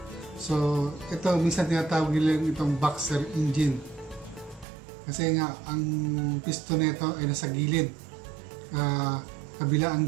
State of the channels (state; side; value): drops out; left; at 4.7 s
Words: So, ito, minsan tinatawag nila itong boxer engine. Kasi nga, ang piston nito ay nasa gilid. Kabila ang